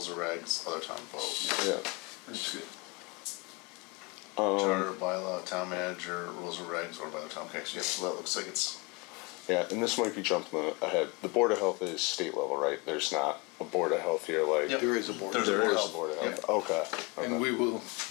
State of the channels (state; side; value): quieter; right; 27.5 dB